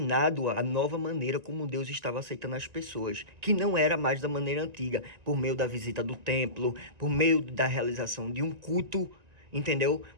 a nova maneira como Deus estava aceitando as pessoas, que não era mais da maneira antiga, por meio da visita do templo, por meio da realização de um culto, entendeu?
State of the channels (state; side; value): late; left; 1.9 ms